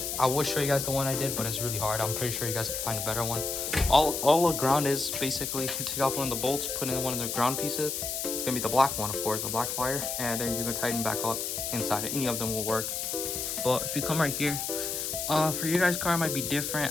I would show you guys the one I did, but it's really hard. I'm pretty sure you guys can find a better one. All the ground is basically, you take off one of the bolts, put in one of the ground pieces. It's gonna be the black one, of course, the black wire, and then you're gonna tighten back up inside. Any of them will work. But if you come right here, for your guys' car it might be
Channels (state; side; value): noise; left; hiss, 3 dB below the sound